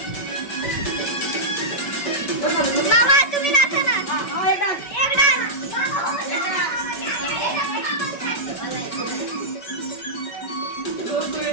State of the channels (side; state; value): right; late; 5.2 ms